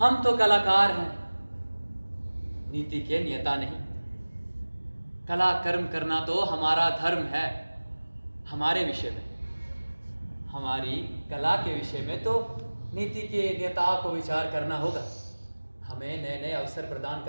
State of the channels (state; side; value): inverted; both; correlation -1.00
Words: तो कलाकार हैं, नीति के नियता नहीं। कला कर्म करना तो हमारा धर्म है। हमारे विषय में, हमारी कला के विषय में तो नीति के नेताओं को विचार करना होगा। हमें नए नए अवसर प्रदान